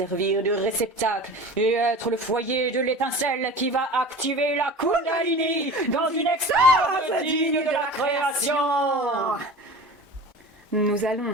de réceptacle et être le foyer de l'étincelle qui va activer la Kundalini dans une extase digne de la création. Nous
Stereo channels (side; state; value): both; normal; correlation 0.36